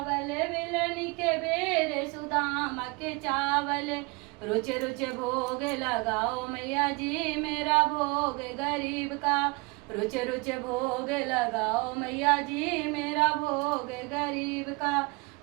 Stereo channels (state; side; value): quieter; left; 28.2 dB